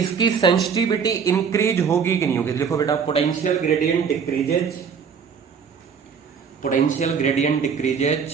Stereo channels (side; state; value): left; quieter; 6.5 dB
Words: सेंसिटिविटी इंक्रीज होगी कि नहीं होगी? देखो बेटा potential gradient decreases, potential gradient